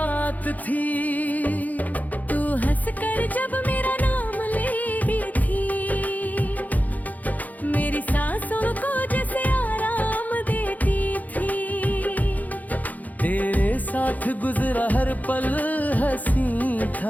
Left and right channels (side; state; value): right; late; 0.079 ms